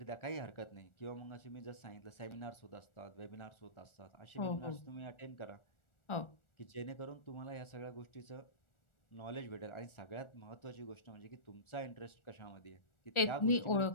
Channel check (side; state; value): right; late; 1.4 ms